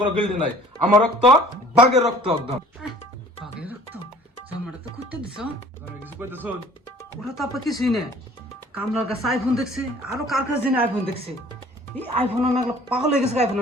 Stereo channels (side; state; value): both; normal; correlation 0.52